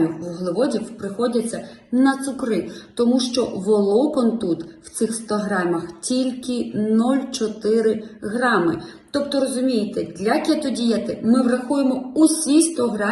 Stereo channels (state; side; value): identical; both; correlation 1.00